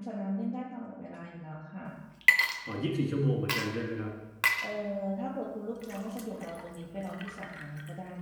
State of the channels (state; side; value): identical; both; correlation 1.00